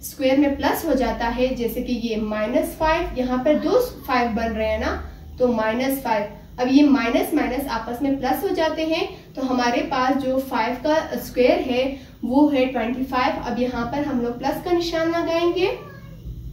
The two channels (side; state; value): both; identical; correlation 1.00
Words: स्क्वायर में प्लस हो जाता है, जैसे कि ये -5, यहाँ पर 2 5 बन रहे हैं ना तो -5। अब ये माइनस माइनस आपस में प्लस हो जाते हैं तो हमारे पास जो 5 का स्क्वायर है वो है 25। अब यहाँ पर हम लोग प्लस का निशान लगाएंगे